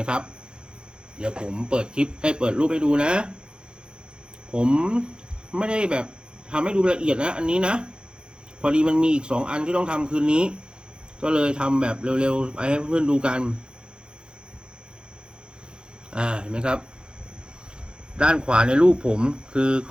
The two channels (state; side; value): late; left; 0.049 ms